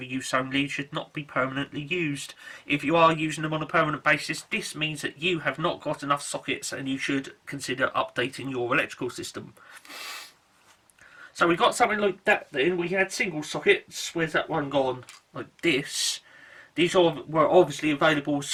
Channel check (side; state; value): both; identical; correlation 1.00